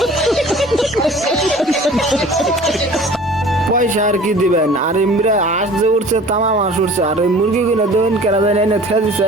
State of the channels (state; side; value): normal; both; correlation 0.46